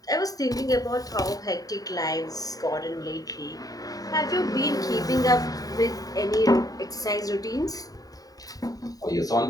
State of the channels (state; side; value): late; right; 0.18 ms